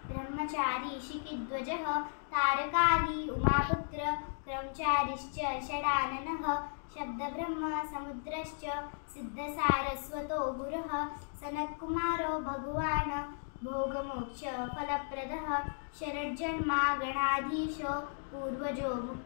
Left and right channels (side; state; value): right; silent; digital silence